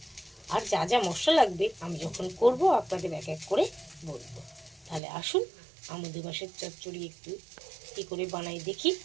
আর যা যা মশলা লাগবে আমি যখন করব আপনাদের এক এক করে বলবো। তাহলে আসুন আমুদি মাছের চচ্চড়ি একটু কী করে বানাই দেখি।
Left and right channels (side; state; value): left; drops out; at 5.0 s